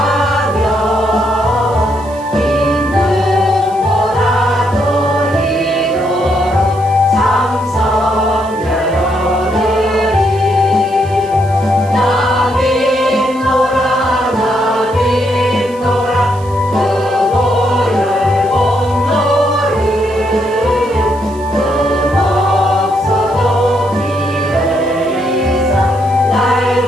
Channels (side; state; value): right; noise; hiss, 24 dB below the sound